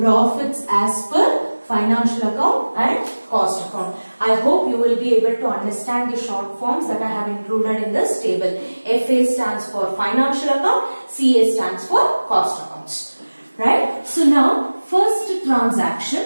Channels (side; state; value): both; inverted; correlation -1.00